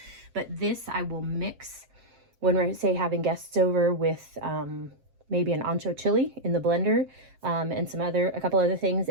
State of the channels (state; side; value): late; left; 7.5 ms